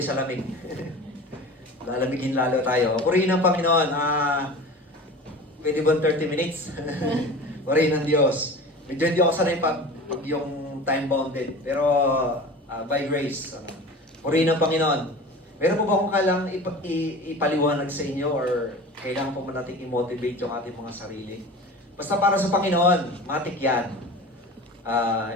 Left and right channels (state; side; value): normal; both; correlation 0.36